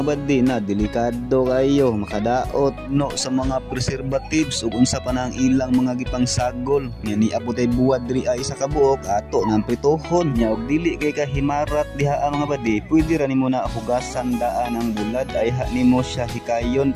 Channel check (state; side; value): identical; both; correlation 1.00